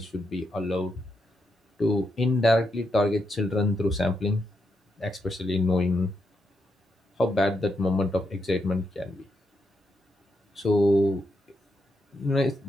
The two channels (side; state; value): both; normal; correlation 0.82